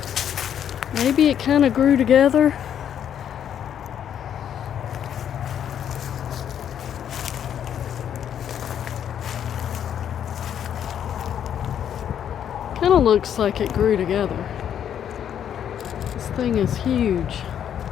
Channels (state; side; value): quieter; right; 9.3 dB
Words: Maybe it kind of grew together. Kind of looks like it grew together. This thing is huge.